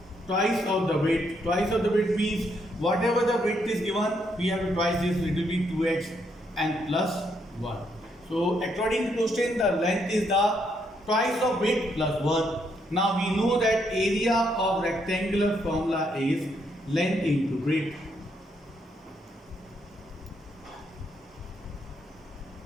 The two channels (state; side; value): normal; both; correlation 0.75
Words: Twice of the width. Twice of the width means whatever the width is given, we have to twice this, it will be 2x and plus 1. So according to question, the length is the twice of width plus 1. Now we know that area of rectangular formula is length into breadth.